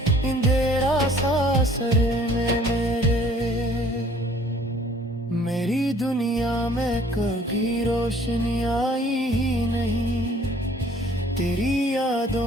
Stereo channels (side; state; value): both; normal; correlation 0.56